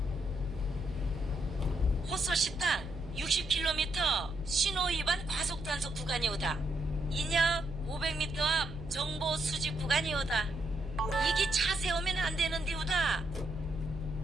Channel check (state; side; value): noise; right; hum, 14 dB below the sound